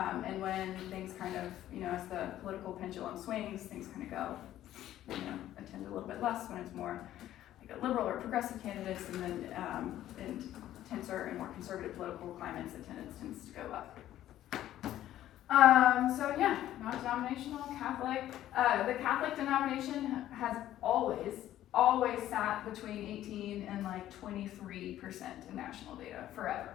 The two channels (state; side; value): quieter; right; 12.9 dB